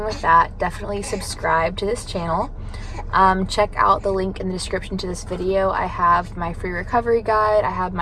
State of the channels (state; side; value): identical; both; correlation 1.00